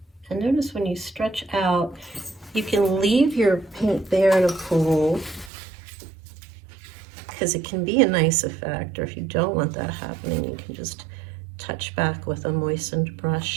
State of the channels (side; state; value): left; drops out; at 5.5 s